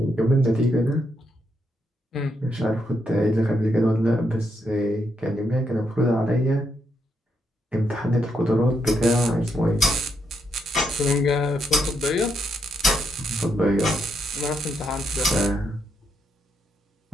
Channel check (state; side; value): normal; both; correlation 0.79